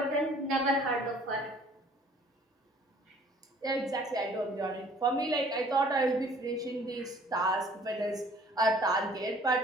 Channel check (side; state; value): both; normal; correlation 0.55